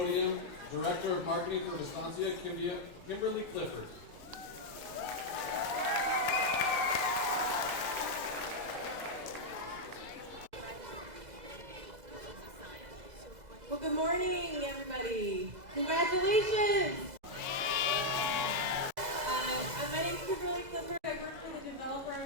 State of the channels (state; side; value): late; left; 2.0 ms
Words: Director of Marketing for Vistancia, Kimberly Clifford. Well, good morning, everybody. Congratulations. My name is Kimberly Clifford. I work for the developer